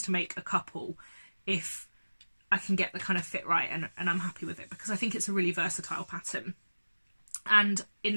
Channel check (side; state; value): both; inverted; correlation -1.00